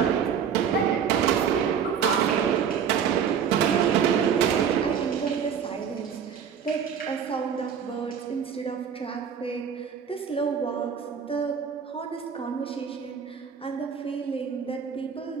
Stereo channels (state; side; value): quieter; left; 7.5 dB